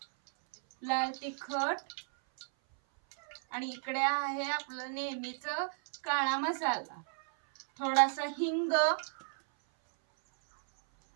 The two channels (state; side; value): silent; left; 55 dB below the other